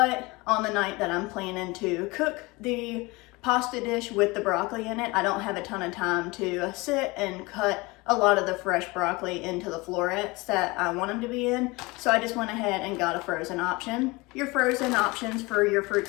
on the night that I'm planning to cook the pasta dish with the broccoli in it, I don't have a ton of time to sit and cut a lot of the fresh broccoli into the florets that I want them to be in. So I just went ahead and got a frozen option. Your frozen options for your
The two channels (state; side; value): quieter; right; 23.8 dB